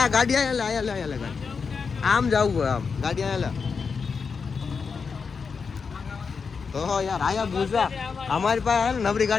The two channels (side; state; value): right; quieter; 5.5 dB